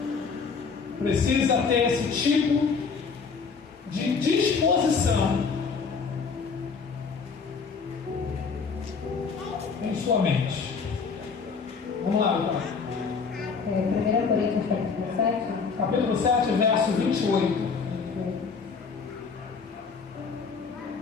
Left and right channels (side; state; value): right; quieter; 5.3 dB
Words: Precisa ter esse tipo de disposição em sua mente. Vamos lá, então. 1 Coríntios capítulo 7. Capítulo 7, verso 28.